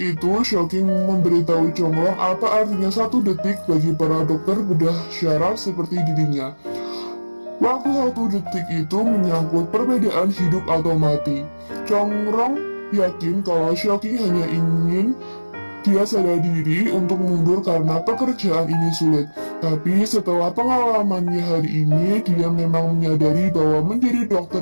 itu, Xiao King memberitahu Chongrong apa artinya 1 detik bagi para dokter bedah syaraf seperti dirinya. Waktu 1 detik itu menyangkut perbedaan hidup atau mati. Chongrong yakin kalau Xiao King hanya ingin dia sadar diri untuk mundur karena pekerjaan ini sulit. Tapi setelah pengalamannya hari ini, dia memang menyadari bahwa menjadi dokter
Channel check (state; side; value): inverted; both; correlation -1.00